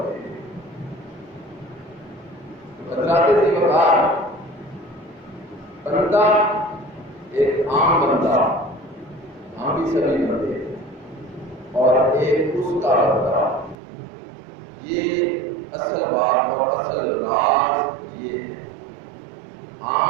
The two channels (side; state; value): left; drops out; at 13.8 s